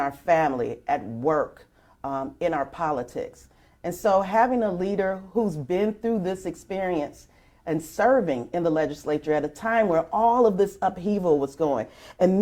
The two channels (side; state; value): both; identical; correlation 1.00